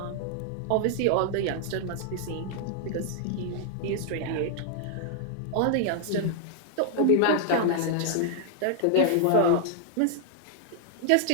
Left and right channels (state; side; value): different; both; correlation -0.01